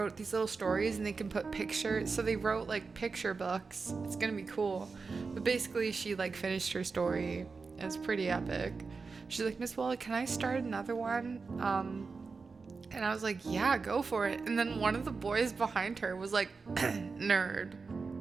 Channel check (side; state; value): left; quieter; 4.6 dB